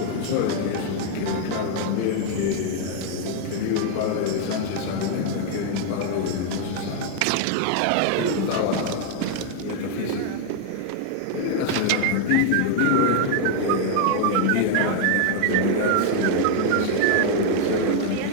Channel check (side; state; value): both; different; correlation 0.00